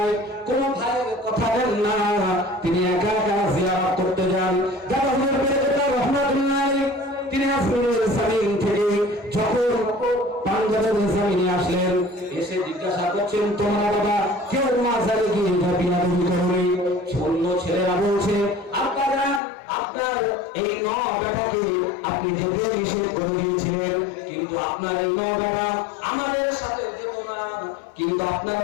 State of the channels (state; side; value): drops out; right; at 19.4 s